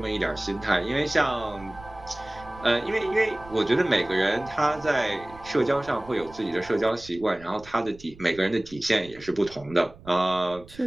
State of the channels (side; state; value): right; noise; rumble, 20 dB below the sound